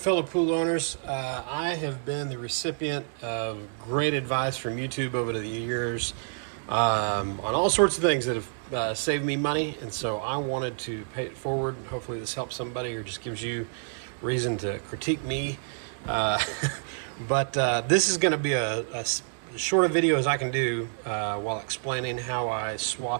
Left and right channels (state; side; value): silent; left; digital silence